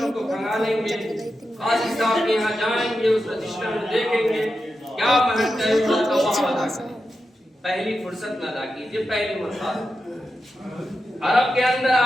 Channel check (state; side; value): normal; both; correlation 0.89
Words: کو بھگا لیں گے, قاضی صاحب کے یہاں جائیں گے, اس رشتہ میں دیکھیں گے کیا مہر طے ہوا تو وہاں ادا کریں. پہلی فرصت میں ادا کیجیے, پہلی مرتبہ. عرب کے اندر